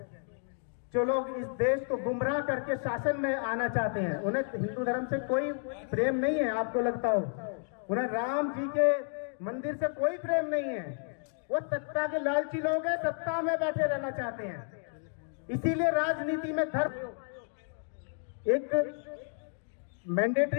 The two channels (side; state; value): right; silent; 57 dB below the other